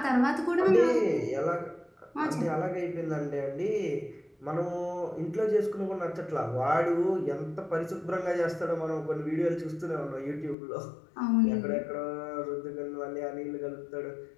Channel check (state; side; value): drops out; right; at 10.6 s